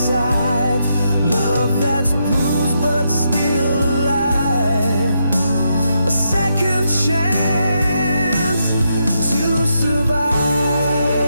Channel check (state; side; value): inverted; both; correlation -0.80